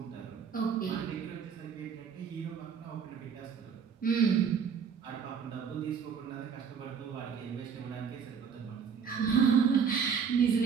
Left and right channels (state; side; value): quieter; left; 6.7 dB